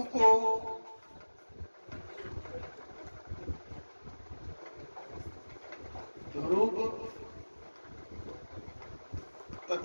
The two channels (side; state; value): both; inverted; correlation -1.00